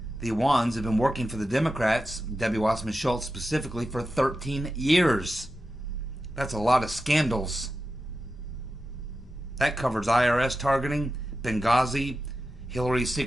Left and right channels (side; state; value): both; normal; correlation 0.91